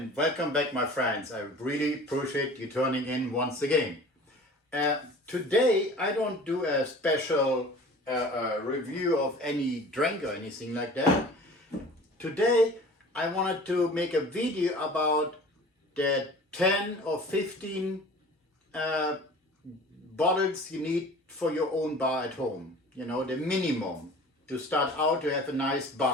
welcome back, my friends. I really appreciate you turning in once again. Today I don't do a special review of any drink or anything like that. Today I wanted to make a video about the 10 or 15 bottles you need for your own bar at home. You know, the minimum to start out to have a nice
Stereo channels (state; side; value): normal; both; correlation 0.43